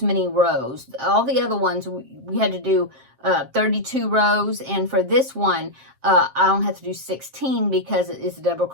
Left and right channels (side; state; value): left; late; 7.5 ms